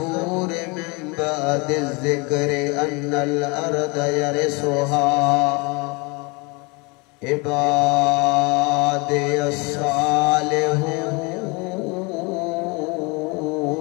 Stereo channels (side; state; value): right; quieter; 28.6 dB